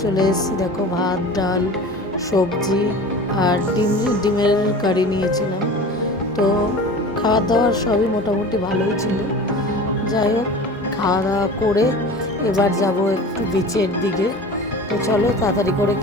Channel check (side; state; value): both; normal; correlation 0.37